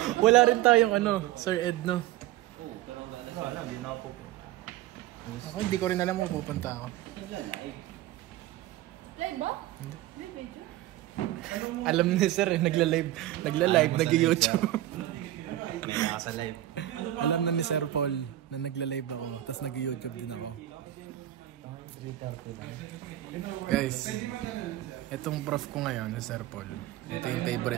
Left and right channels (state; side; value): quieter; left; 14.4 dB